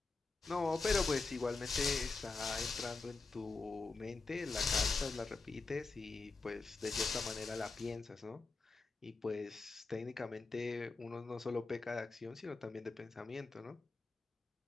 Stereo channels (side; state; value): right; quieter; 3.9 dB